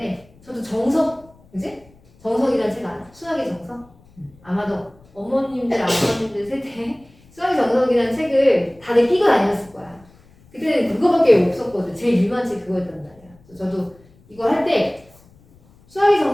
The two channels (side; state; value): left; noise; rumble, 28 dB below the sound